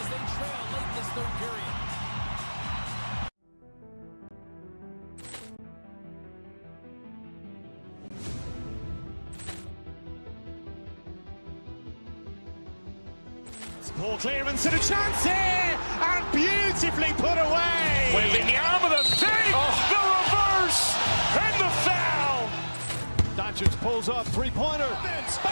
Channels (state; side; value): inverted; both; correlation -1.00